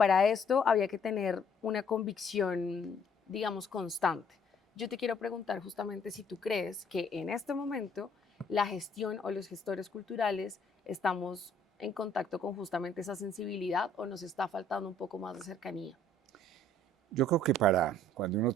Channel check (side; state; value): both; normal; correlation 0.61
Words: esto había que tener una convicción, digamos, constante. Yo te quiero preguntar justamente si tú crees que en este momento la gestión o los gestores culturales estamos en contacto con justamente esa sensibilidad o nos está faltando un poco más de cercanía. Yo creo que para cuando uno